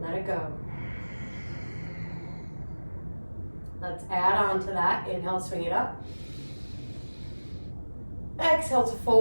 Let it go. Let's add on to that. Inhale, swing it up. Exhale to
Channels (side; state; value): both; inverted; correlation -1.00